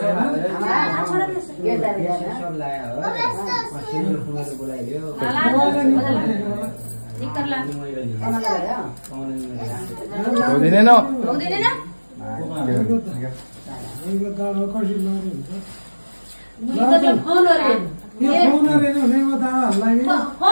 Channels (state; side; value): inverted; both; correlation -1.00